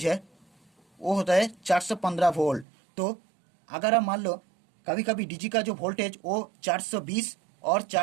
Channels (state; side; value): drops out; left; at 2.7 s